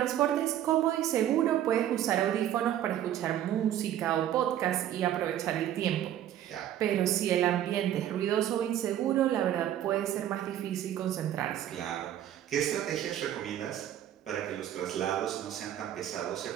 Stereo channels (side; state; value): left; quieter; 11.4 dB